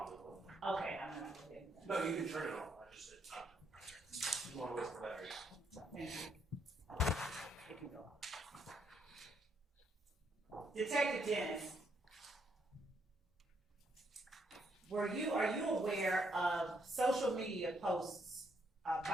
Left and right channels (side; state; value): both; normal; correlation 0.74